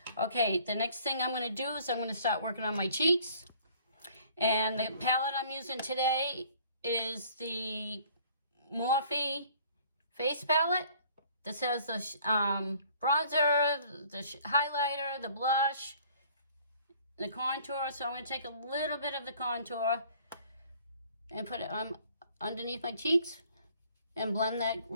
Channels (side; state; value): both; inverted; correlation -0.56